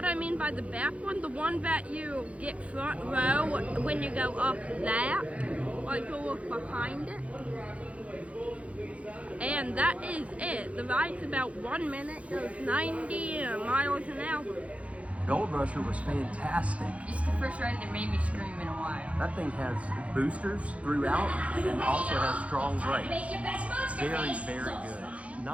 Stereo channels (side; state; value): left; late; 0.064 ms